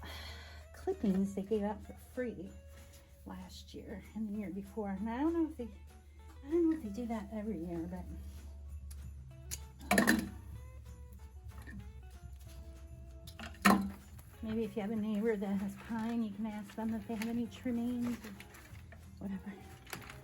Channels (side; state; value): both; identical; correlation 1.00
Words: clippings they gave out for free last year and the year before, and I don't know if they do that every year, but maybe if you have a neighbor that has pine, you can ask them if they have any trimmings or whatever.